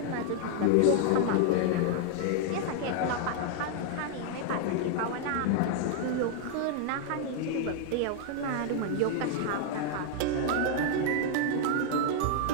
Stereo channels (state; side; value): different; both; correlation 0.00